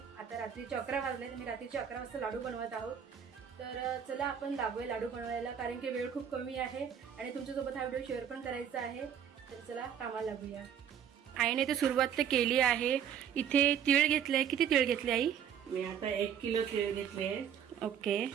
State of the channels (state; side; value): quieter; left; 8.6 dB